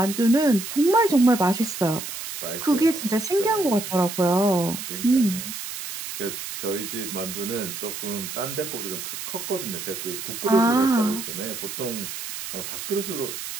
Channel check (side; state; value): right; noise; hiss, 8 dB below the sound